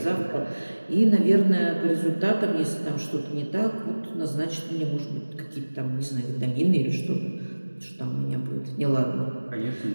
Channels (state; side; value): inverted; both; correlation -1.00